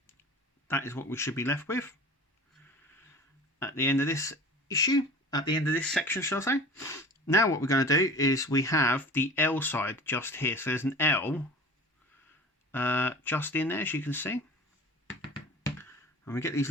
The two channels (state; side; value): normal; both; correlation 0.39